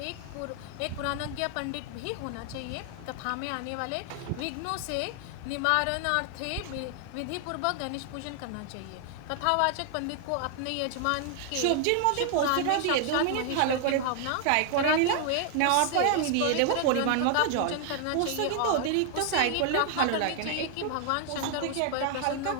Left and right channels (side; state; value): both; different; correlation 0.00